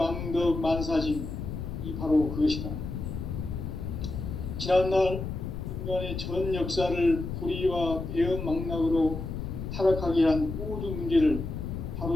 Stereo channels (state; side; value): noise; left; rumble, 5 dB below the sound